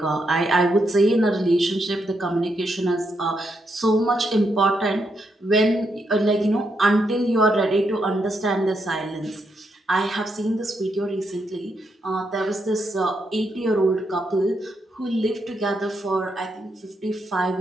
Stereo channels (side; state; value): both; normal; correlation 0.80